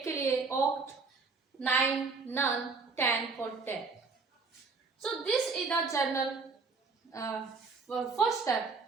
के लिए oct, 9 none, 10 for 10. So this is the general first step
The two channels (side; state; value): left; quieter; 4.4 dB